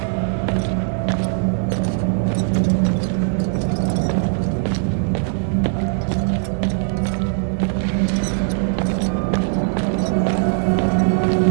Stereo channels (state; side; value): silent; left; 66 dB below the other